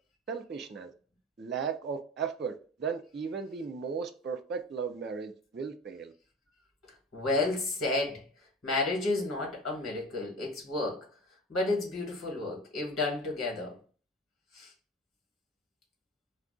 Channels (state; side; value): normal; both; correlation 0.35